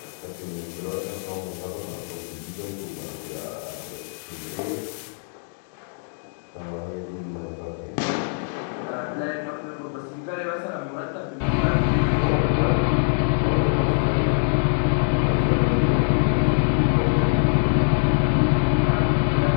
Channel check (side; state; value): right; silent; 63 dB below the other